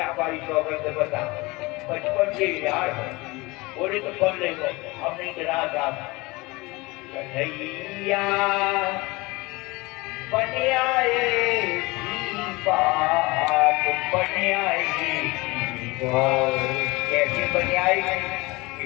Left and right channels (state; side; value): quieter; right; 23.3 dB